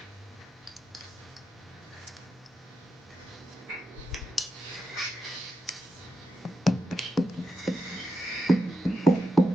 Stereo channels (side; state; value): both; normal; correlation 0.86